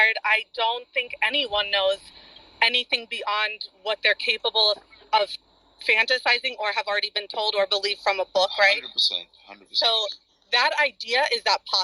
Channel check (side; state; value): both; identical; correlation 1.00